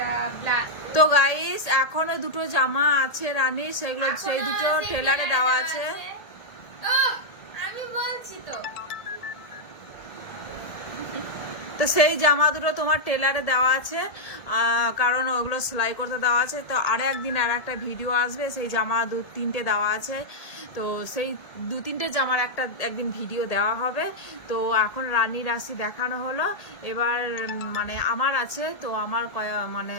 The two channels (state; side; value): late; right; 1.8 ms